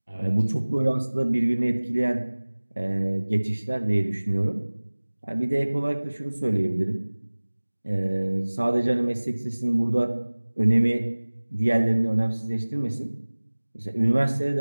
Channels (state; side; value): inverted; both; correlation -1.00